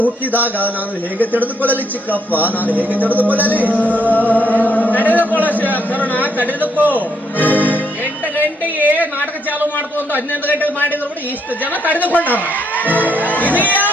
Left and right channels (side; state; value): both; normal; correlation 0.74